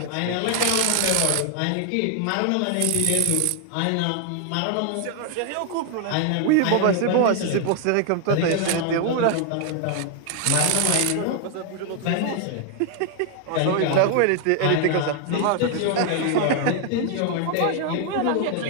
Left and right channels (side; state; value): both; different; correlation 0.00